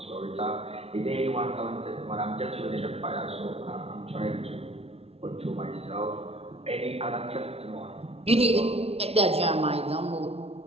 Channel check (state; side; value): late; left; 0.29 ms